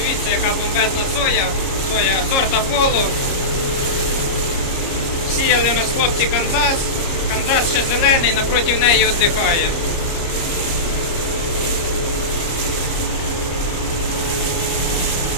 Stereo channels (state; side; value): late; right; 29 ms